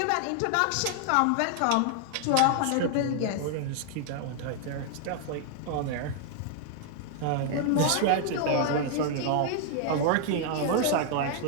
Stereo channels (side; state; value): both; different; correlation 0.00